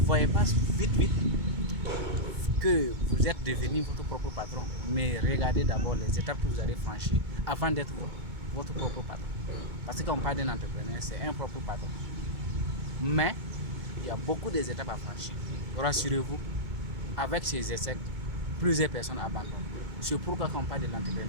pas vite que vous êtes devenu votre propre patron, mais regardez d'abord les étapes que vous allez franchir avant d'être votre propre patron. Parce que quand on parle d'un entrepreneur, c'est un propre patron. Mais il y a beaucoup d'étapes à franchir. Rassurez-vous, avec ces essais, plusieurs personnes abandonnent. C'est pourquoi quand on parle de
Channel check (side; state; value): left; late; 2.2 ms